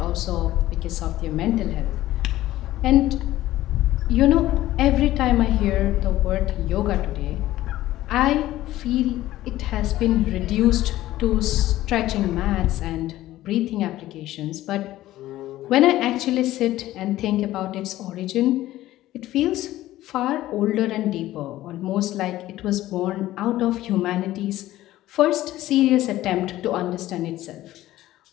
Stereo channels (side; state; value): right; quieter; 15.2 dB